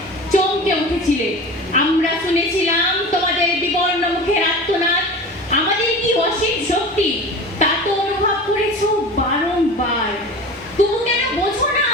চমকে উঠেছিলে। আমরা শুনেছিলাম তোমাদের বিবর্ণ মুখের আর্তনাদ। আমাদের কি অসীম শক্তি তা তো অনুভব করেছো বারংবার। তবু কেন বোঝো না?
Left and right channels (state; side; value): normal; both; correlation 0.34